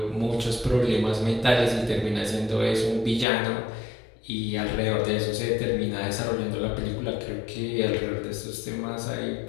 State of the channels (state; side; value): drops out; right; at 3.2 s